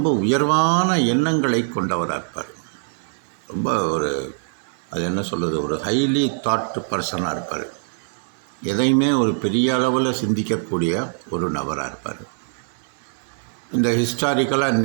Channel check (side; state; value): left; silent; 63 dB below the other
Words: உயர்வான எண்ணங்களை கொண்டவராக இருப்பார். ரொம்ப அது என்ன சொல்கிறது, ஒரு ஹைலி தாட் பர்சனாக இருப்பார். எதையுமே ஒரு பெரிய அளவில் சிந்திக்கக்கூடிய ஒரு நபராக இருப்பார். இந்த ஹிஸ்டாரிக்கலாக